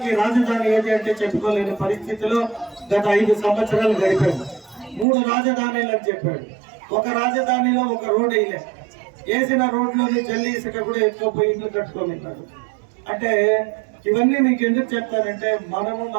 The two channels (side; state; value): left; drops out; at 5.1 s